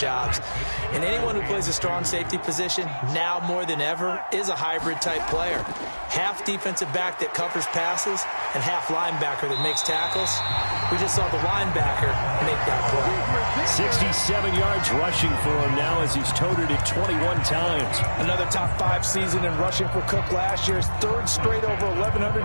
And anyone who plays a strong safety position, now more than ever, is a hybrid-type player. Half defensive back that covers passes and half linebacker that makes tackles. We just saw the linebacker make that play. 67 yards rushing for him now as he's toted it 21 times. Another top 5 season in rushing for Cook last year. His third straight over 1,100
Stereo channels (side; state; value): both; inverted; correlation -1.00